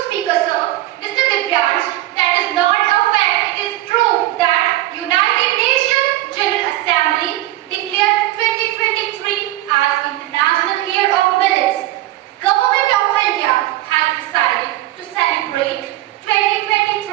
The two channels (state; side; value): quieter; left; 16.0 dB